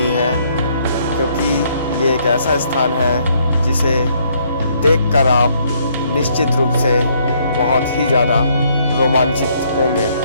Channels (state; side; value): inverted; both; correlation -0.68